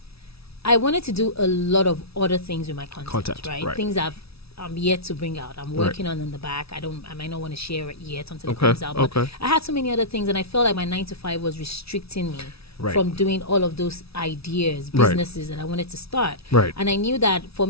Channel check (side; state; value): right; late; 0.77 ms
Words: I wanted to do a lot of other things with my content, right? Things I'm yet to bring out. I'm working on in the back. I might not want to share it yet until it comes out. But I had so many other things, and I felt like my 9 to 5 was restricting me from doing all of those ideas, businesses that I wanted to start. Right. And I knew that for